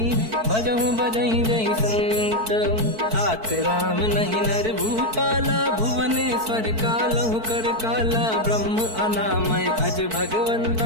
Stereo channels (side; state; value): left; late; 4.5 ms